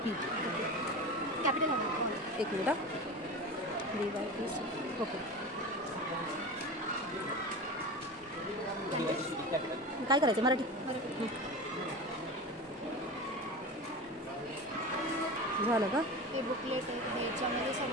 कॅपिटल एक मिनिट. DYPCP okay. काय करायचं मराठी झालं का? हे बुकलेट आहे. याच्यामध्ये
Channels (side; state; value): both; normal; correlation 0.29